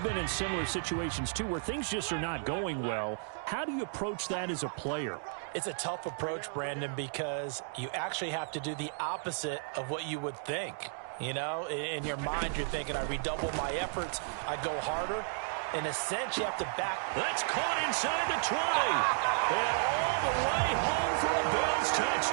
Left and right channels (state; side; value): silent; left; digital silence